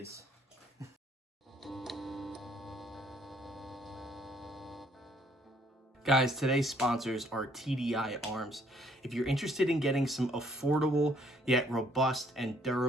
Guys, today's sponsors are TDI Arms. If you're interested in getting some affordable yet robust and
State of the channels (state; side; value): normal; both; correlation 0.64